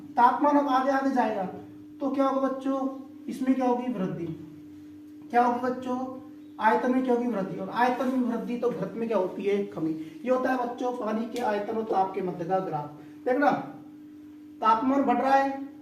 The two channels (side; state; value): both; identical; correlation 1.00